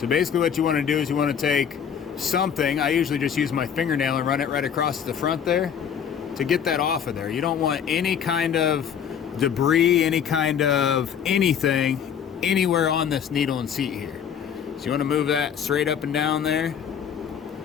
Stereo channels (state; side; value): quieter; right; 8.1 dB